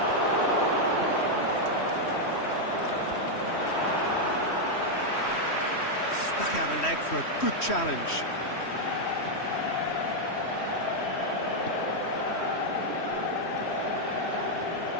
Stuck out a leg for a good challenge.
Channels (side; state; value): right; late; 3.1 ms